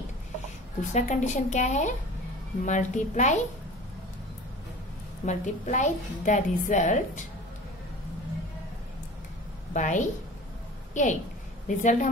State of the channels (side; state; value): both; normal; correlation 0.39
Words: दूसरा कंडीशन क्या है, multiply the result by 8। Result